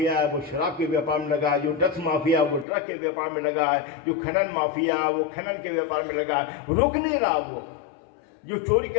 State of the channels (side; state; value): right; drops out; at 2.7 s